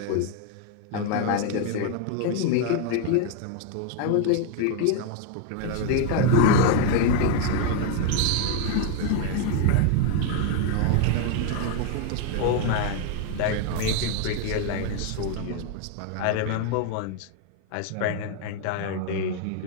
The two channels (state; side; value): different; both; correlation 0.01